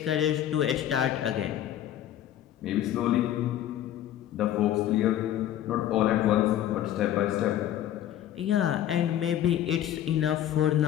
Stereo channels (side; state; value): right; quieter; 11.7 dB